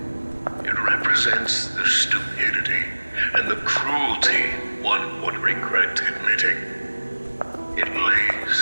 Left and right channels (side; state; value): both; inverted; correlation -1.00